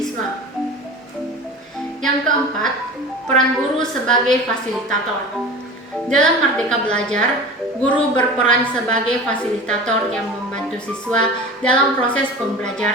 Yang keempat, peran guru sebagai fasilitator. Dalam Merdeka Belajar, guru berperan sebagai fasilitator yang membantu siswa dalam proses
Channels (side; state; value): both; normal; correlation 0.35